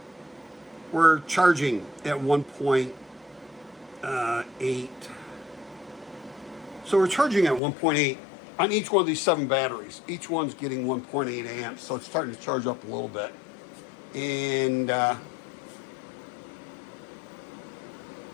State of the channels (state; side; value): drops out; right; at 7.6 s